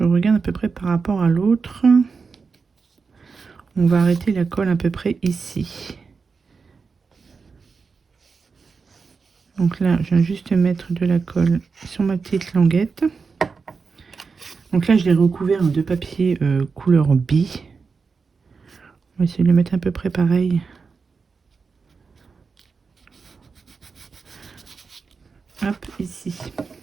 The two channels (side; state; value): left; quieter; 4.9 dB